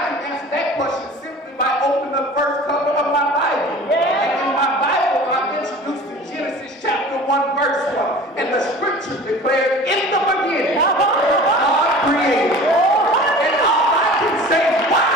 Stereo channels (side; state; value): both; normal; correlation 0.41